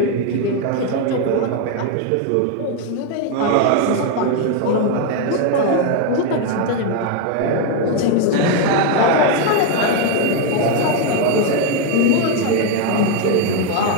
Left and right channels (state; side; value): different; both; correlation 0.01